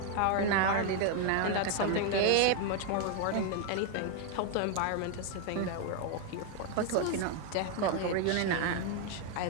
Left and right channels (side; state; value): both; different; correlation 0.00